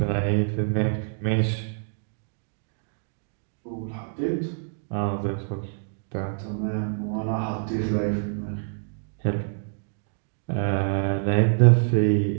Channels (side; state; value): left; silent; digital silence